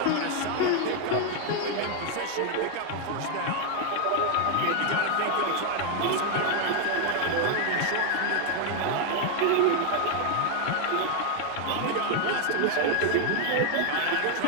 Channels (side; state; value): both; different; correlation 0.01